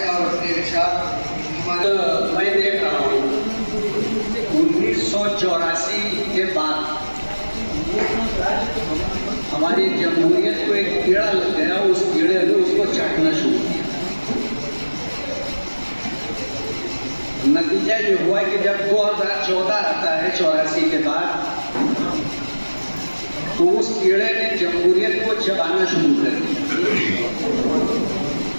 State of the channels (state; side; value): inverted; both; correlation -1.00